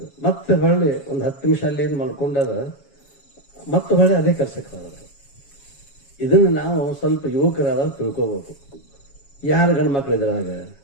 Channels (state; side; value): late; right; 7.2 ms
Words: ಮತ್ತೆ ಹೊಳ್ಳಿ ಒಂದು 10 ನಿಮಿಷ ಅಲ್ಲಿ ಏನು ಮಲ್ಕೊಂಡಾರ, ಮತ್ತೆ ಹೊಳ್ಳಿ ಅದೇ ಕೆಲಸಕ್ಕೆ ಹೋದ್ರು. ಇದನ್ನು ನಾವು ಸ್ವಲ್ಪ ಯುವಕರಾದಾಗ ತಿಳ್ಕೋಬೇಕು. ಯಾರು ಗಂಡು ಮಕ್ಕಳು ಇದ್ರಾಗ